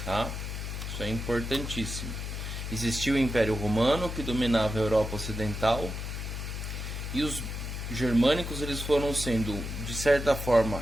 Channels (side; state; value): left; noise; hum, 5 dB below the sound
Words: tá? Isso é importantíssimo. Existiu o Império Romano, que dominava a Europa Ocidental, e os germânicos eles foram sendo, de certa forma,